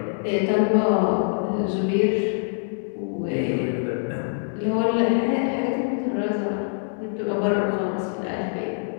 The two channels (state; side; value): silent; right; digital silence